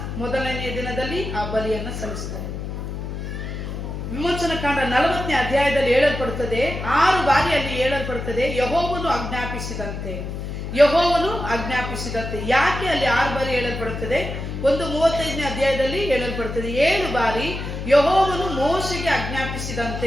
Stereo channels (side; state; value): left; noise; hum, 6 dB below the sound